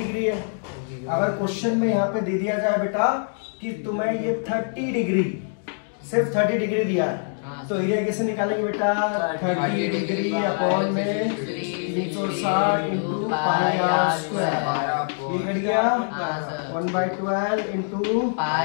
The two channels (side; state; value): right; silent; digital silence